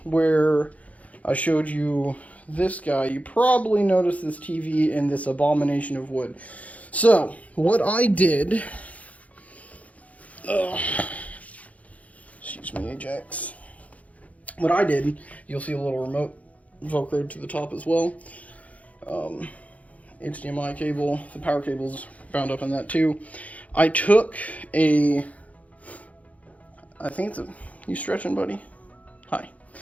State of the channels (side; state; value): right; late; 0.069 ms